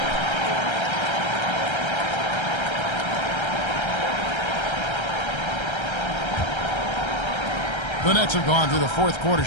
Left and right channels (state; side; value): late; right; 1.3 ms